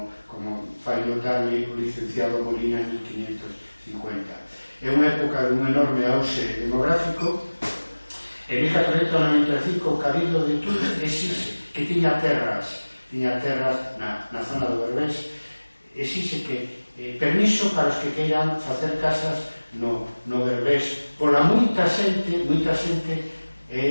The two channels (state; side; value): inverted; both; correlation -1.00